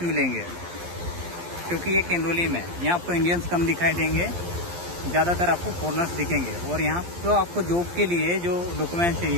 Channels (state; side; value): late; left; 11 ms